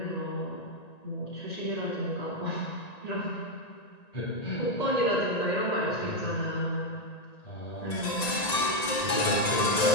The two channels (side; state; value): right; late; 1.9 ms